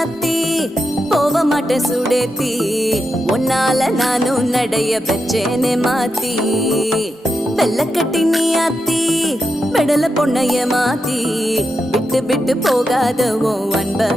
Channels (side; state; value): both; normal; correlation 0.87